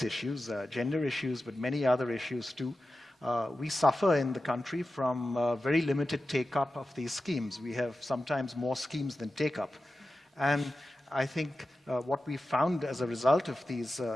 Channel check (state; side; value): normal; both; correlation 0.93